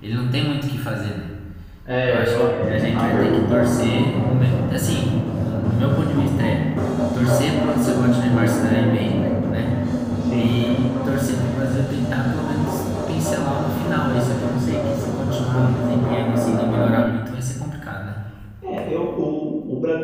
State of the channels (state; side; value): identical; both; correlation 1.00